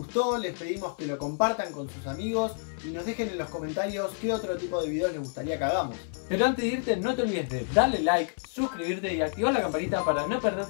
les pedimos que lo compartan con sus amigos y nos dejen en los comentarios qué otro tipo de videos les gustaría que hagamos. Pero antes de irte, no te olvides de darle like, suscribirte y activar la campanita para no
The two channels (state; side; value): silent; right; 57 dB below the other